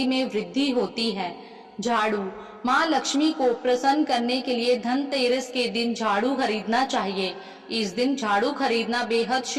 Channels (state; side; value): identical; both; correlation 1.00